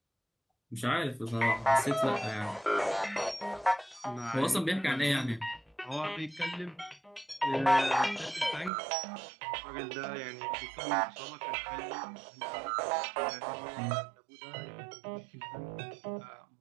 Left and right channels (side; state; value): left; drops out; at 8.7 s